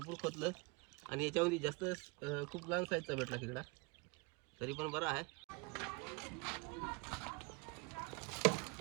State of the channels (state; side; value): quieter; left; 27.7 dB